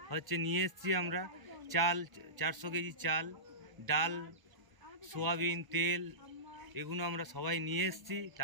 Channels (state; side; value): late; left; 1.1 ms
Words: নিয়ে এসেছি আমরা। চাল, 400 কেজি চাল, ডাল, সোয়াবিন, তেল, এগুলো আমরা সবাই নিয়ে এসেছি।